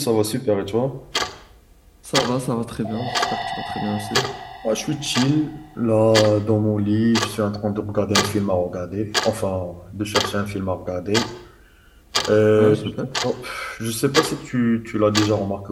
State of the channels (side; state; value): both; identical; correlation 1.00